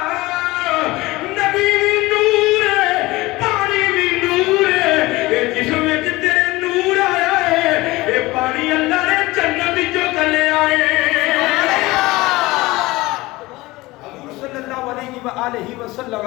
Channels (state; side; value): quieter; right; 20.2 dB